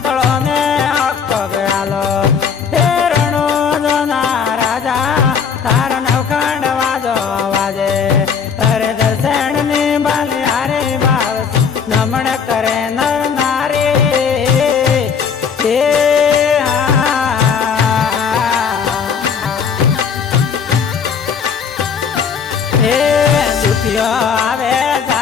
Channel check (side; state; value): right; quieter; 6.6 dB